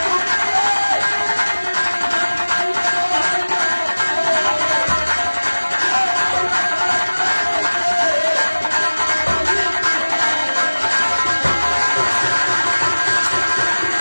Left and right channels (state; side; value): inverted; both; correlation -1.00